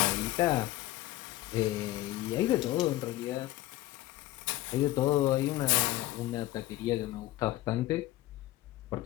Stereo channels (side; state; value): right; quieter; 16.1 dB